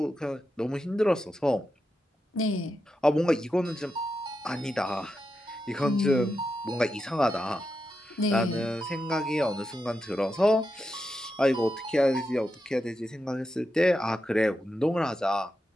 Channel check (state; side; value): normal; both; correlation 0.87